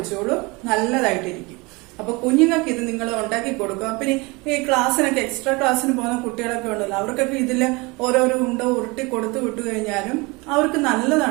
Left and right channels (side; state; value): left; quieter; 25.9 dB